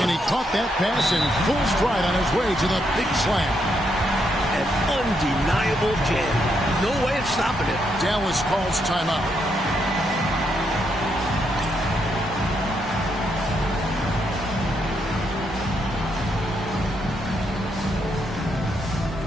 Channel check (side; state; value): both; normal; correlation 0.78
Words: he caught that pass in full stride on his way to the big slam. An undeniable jam. No way of stopping it. Dallas calls timeout.